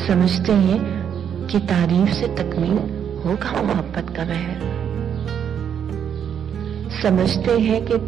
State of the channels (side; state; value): left; quieter; 8.4 dB